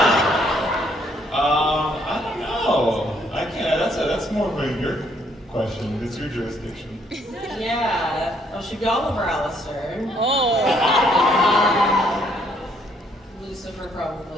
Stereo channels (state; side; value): normal; both; correlation 0.68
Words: I don't know. I can't. That's more of your question. It's your jurisdiction. Yeah. Well, should be Oliver Alistair. Oh. Lucifer